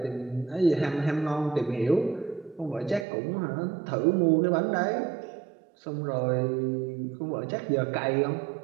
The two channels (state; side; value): drops out; left; at 3.1 s